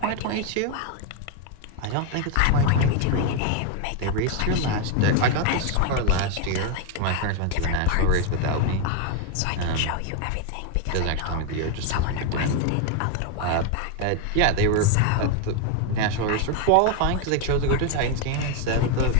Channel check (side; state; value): both; different; correlation 0.01